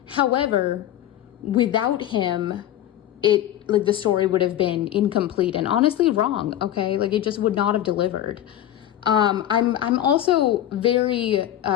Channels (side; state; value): right; quieter; 12.1 dB